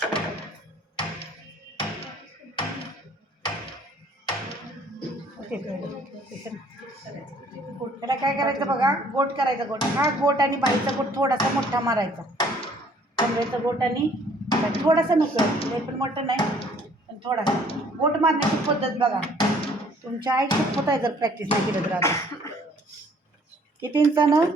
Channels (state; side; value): normal; both; correlation 0.58